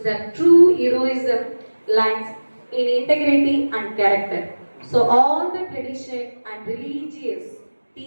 that true heroism lies in integrity and character. So all the tradition and religious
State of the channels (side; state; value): both; inverted; correlation -1.00